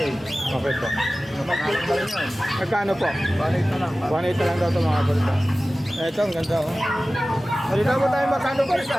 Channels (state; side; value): normal; both; correlation 0.96